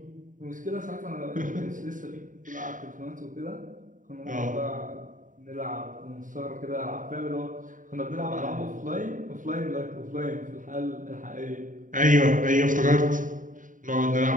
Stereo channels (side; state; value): left; late; 0.38 ms